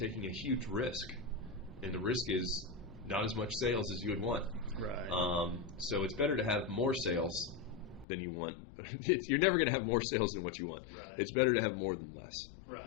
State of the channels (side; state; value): right; drops out; at 8.1 s